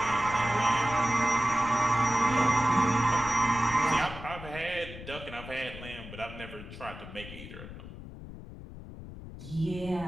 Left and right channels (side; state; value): left; noise; rumble, 13 dB below the sound